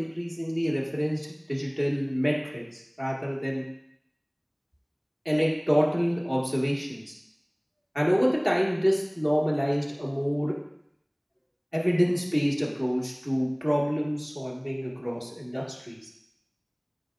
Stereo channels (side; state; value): both; identical; correlation 1.00